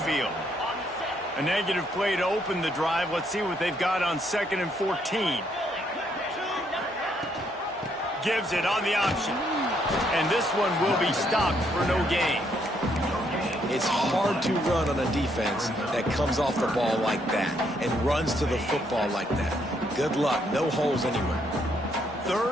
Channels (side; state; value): both; normal; correlation 0.72